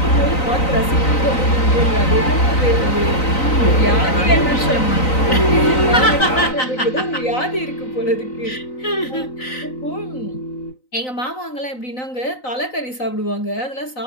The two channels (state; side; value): late; right; 3.9 ms